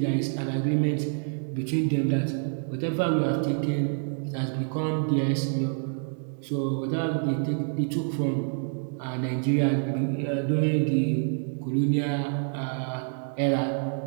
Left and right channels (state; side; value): silent; left; 60 dB below the other